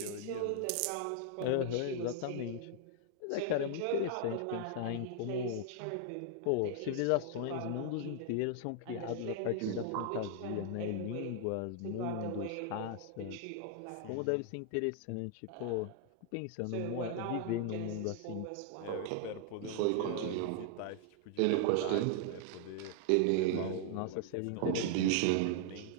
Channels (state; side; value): different; both; correlation 0.00